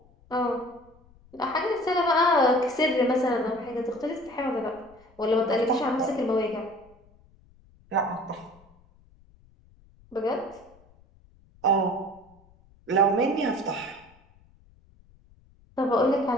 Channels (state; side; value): noise; left; rumble, 29 dB below the sound